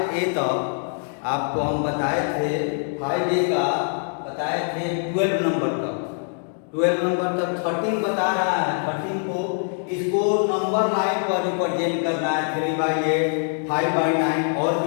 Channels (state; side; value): silent; right; 57 dB below the other